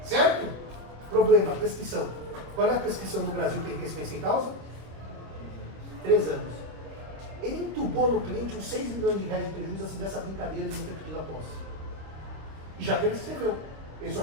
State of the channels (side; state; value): left; late; 26 ms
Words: certo? Problema, prescrição. Qual é a prescrição no Brasil para enriquecimento sem causa? 3 anos. Ele entubou no cliente uns 6 milhões de reais de prejuízo assim dessa brincadeira de não ter pedido a posse. E já prescreveu. Ele só